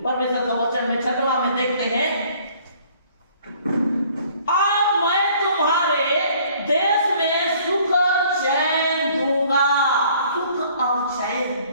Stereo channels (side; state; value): both; inverted; correlation -0.57